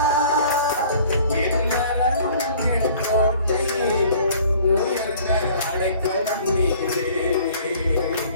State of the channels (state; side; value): inverted; both; correlation -0.51